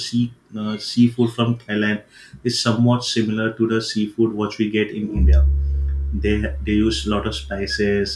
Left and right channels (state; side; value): identical; both; correlation 1.00